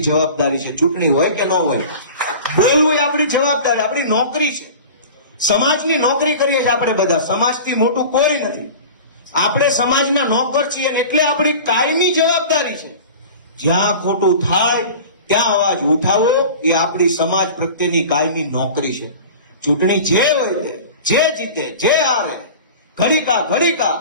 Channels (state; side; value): inverted; both; correlation -0.37